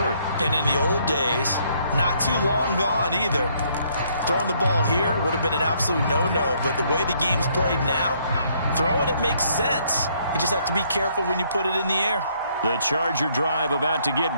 And in the old days, not too long gone either. Throwing the ball here would have been an absolute no-no. But the way the game's played now, throwing it makes sense. You just have to be careful when you put it in the air. The Charger drive about to get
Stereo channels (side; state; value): both; inverted; correlation -0.68